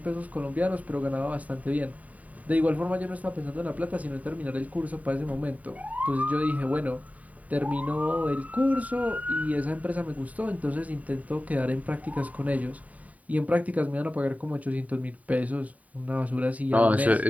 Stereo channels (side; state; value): left; late; 0.071 ms